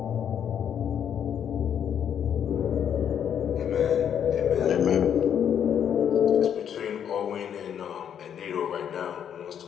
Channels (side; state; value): right; quieter; 8.8 dB